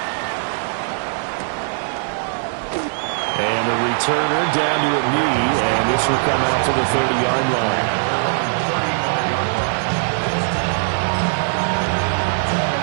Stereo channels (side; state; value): left; silent; digital silence